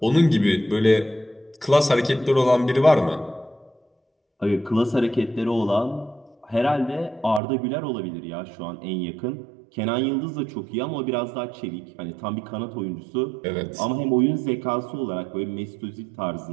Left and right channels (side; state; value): left; drops out; at 7.4 s